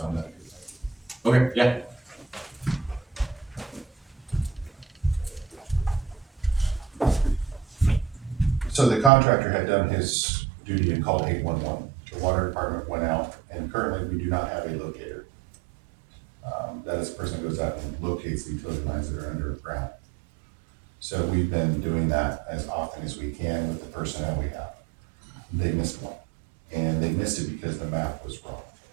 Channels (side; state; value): left; drops out; at 9.1 s